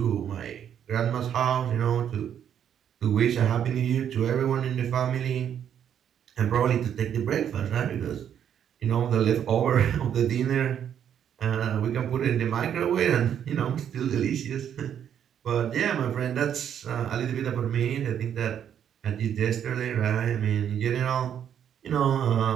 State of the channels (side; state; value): left; quieter; 9.2 dB